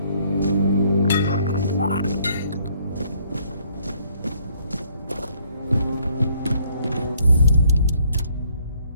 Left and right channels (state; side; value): inverted; both; correlation -0.65